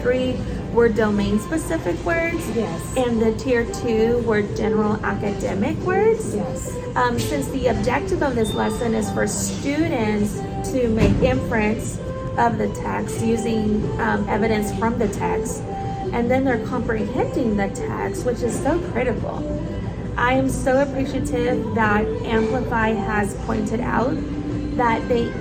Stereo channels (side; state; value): both; identical; correlation 1.00